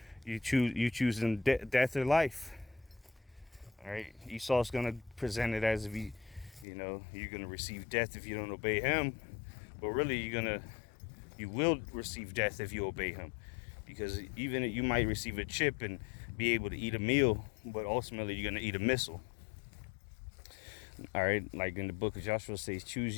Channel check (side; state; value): right; drops out; at 6.7 s